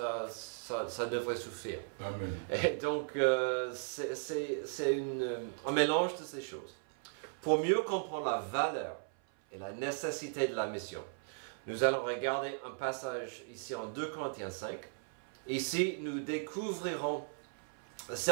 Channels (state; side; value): silent; left; 53 dB below the other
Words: devrait suffire. Amen. Et donc, c'est un mélange de ces choses. Pour mieux comprendre la valeur et la nécessité de la mission, nous allons regarder un passage ici en 2 Corinthiens 5. Ici, nous découvrirons